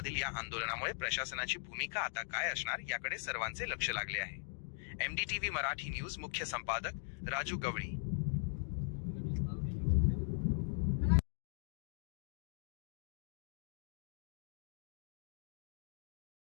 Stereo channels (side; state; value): right; silent; digital silence